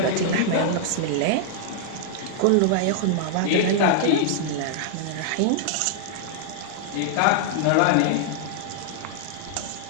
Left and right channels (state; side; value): different; both; correlation -0.01